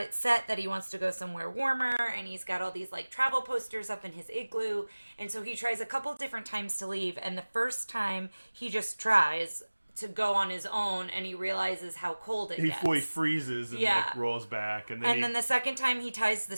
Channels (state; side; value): inverted; both; correlation -1.00